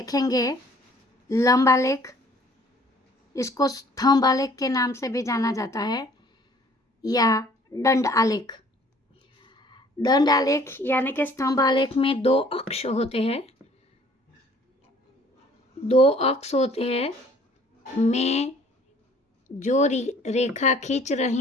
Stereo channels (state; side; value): normal; both; correlation 0.55